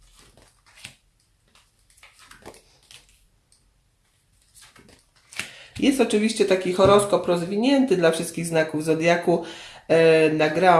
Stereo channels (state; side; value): identical; both; correlation 1.00